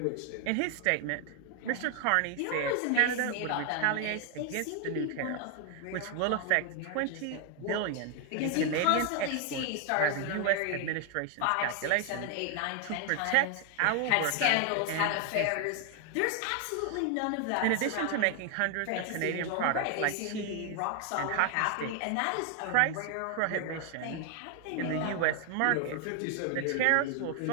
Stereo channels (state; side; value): different; both; correlation 0.00